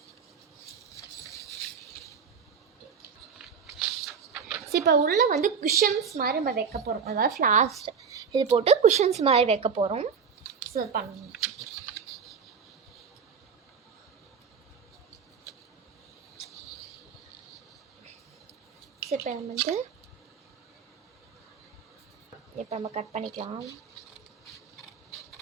ஸோ இப்போ உள்ளே வந்து குஷன்ஸ் மாதிரி நம்ம வைக்க போகிறோம், அதாவது ஃப்ளாஷ் இது போட்டு குஷன்ஸ் மாதிரி வைக்க போகிறோம். ஸோ பண்ணணும். ஸோ இப்போ நம்ம வந்து இப்போ நம்ம கட் பண்ணிக்கலாம்.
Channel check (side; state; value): left; quieter; 6.3 dB